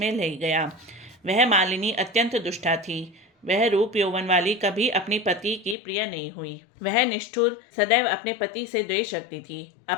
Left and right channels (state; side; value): drops out; right; at 5.8 s